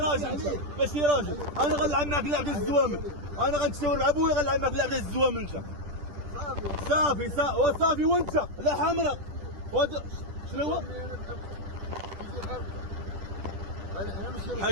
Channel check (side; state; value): left; late; 10 ms